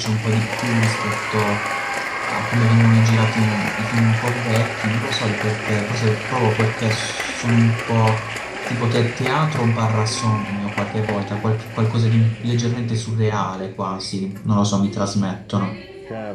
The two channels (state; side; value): identical; both; correlation 1.00